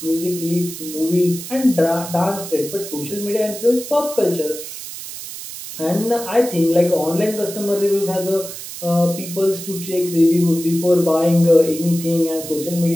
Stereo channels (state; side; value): noise; right; hiss, 10 dB below the sound